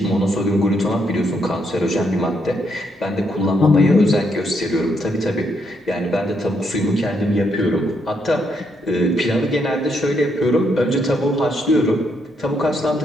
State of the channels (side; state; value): both; normal; correlation 0.76